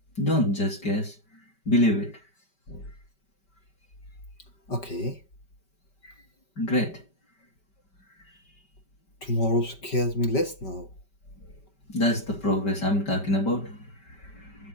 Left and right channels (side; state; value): right; late; 5.2 ms